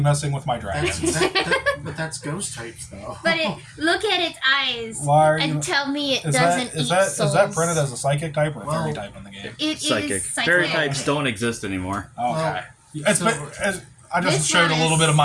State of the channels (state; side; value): identical; both; correlation 1.00